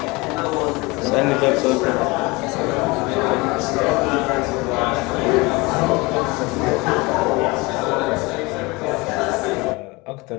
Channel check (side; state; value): right; quieter; 24.6 dB